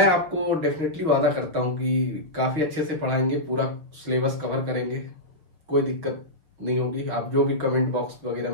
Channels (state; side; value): late; left; 6.4 ms